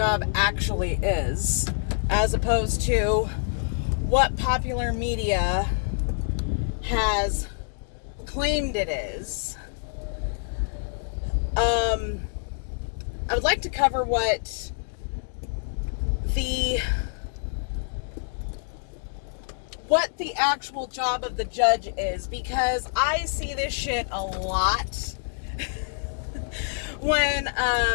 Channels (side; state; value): right; silent; digital silence